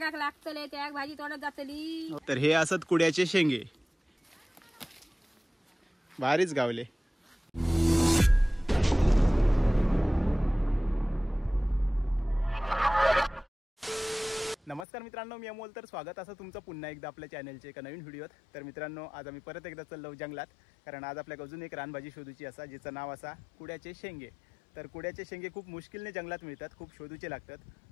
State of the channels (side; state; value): right; drops out; at 14.9 s